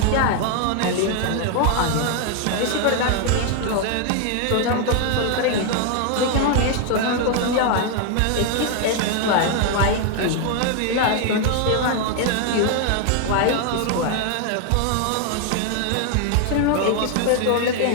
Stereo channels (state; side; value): different; both; correlation 0.00